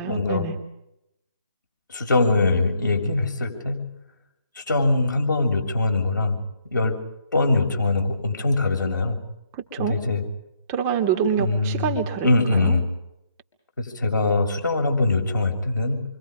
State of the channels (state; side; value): inverted; both; correlation -0.72